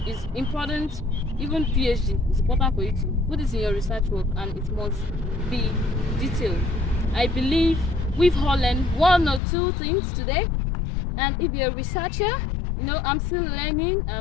It's important, even PhD, it's important for you to put this in your research work and it must be detailed. I believe we've all learned one or two things today. And if you're a researcher, you know, I'm still learning.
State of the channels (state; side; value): drops out; right; at 9.4 s